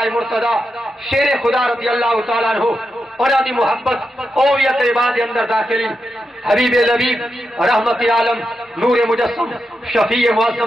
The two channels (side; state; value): both; normal; correlation 0.87